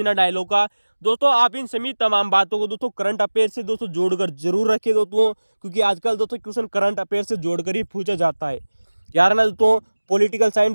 डायलॉग का। दोस्तों आप इन सभी तमाम बातों को दोस्तों करंट अफेयर से दोस्तों जोड़कर जरूर रखें दोस्तों, क्योंकि आजकल दोस्तों क्वेश्चन करंट अफेयर से जोड़कर ही पूछा जाता है। यार ना दोस्तों पॉलिटिकल साइंस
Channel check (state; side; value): inverted; both; correlation -1.00